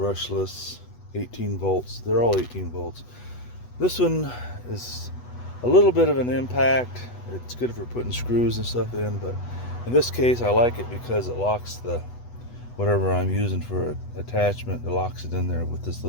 18 volts. They're all 18 volts. This one is a little bit of an impact. It's good for putting screws and stuff in, but in this case I like it because it locks the whatever I'm using for attachment. It locks it in there with this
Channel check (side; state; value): right; late; 8.1 ms